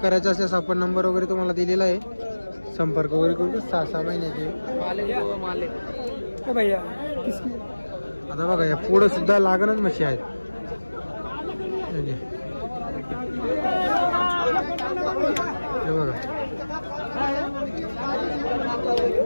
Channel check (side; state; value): both; inverted; correlation -1.00